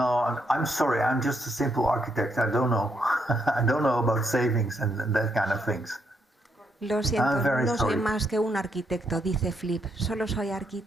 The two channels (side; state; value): both; normal; correlation 0.77